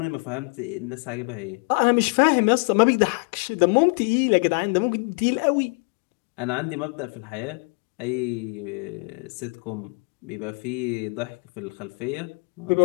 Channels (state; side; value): quieter; right; 35.2 dB